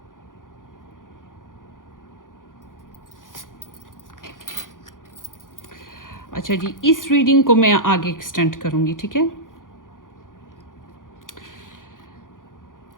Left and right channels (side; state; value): right; late; 0.89 ms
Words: अच्छा जी, इस रीडिंग को मैं आगे एक्सटेंड करूँगी। ठीक है,